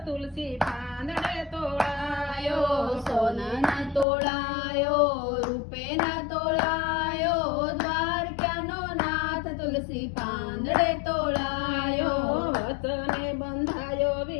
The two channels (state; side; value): drops out; right; at 4.0 s